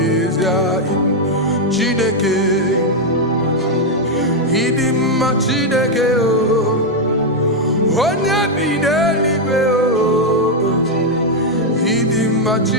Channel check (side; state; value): both; normal; correlation 0.01